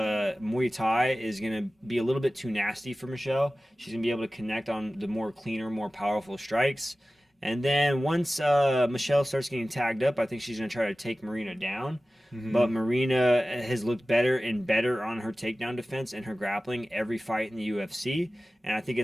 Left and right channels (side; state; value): both; normal; correlation 0.96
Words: Thai is gonna be a little bit too nasty for Michelle. She's gonna be able to connect on the more cleaner, more powerful strikes. And then once Michelle starts getting tagged up, I think she's gonna try to take Marina down. But Marina has looked better and better on her takedown defense and her grappling every fight in the UFC. And I think